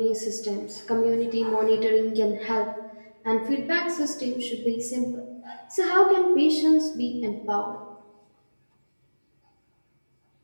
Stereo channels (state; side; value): inverted; both; correlation -1.00